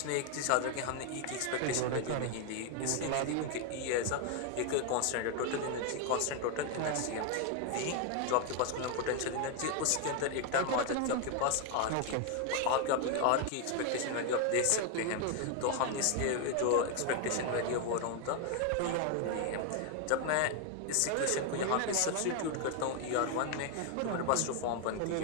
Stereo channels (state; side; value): different; both; correlation 0.01